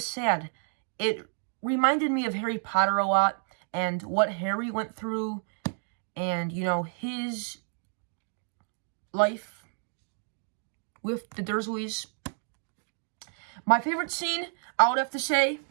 sad. It reminded me of Harry Potter a lot and what Harry went through, and his life with the Dursleys. My favorite scene, I would have to say,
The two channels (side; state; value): left; silent; 58 dB below the other